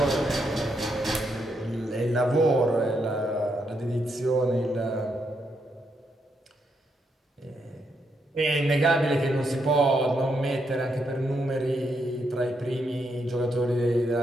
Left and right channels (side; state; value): both; normal; correlation 0.79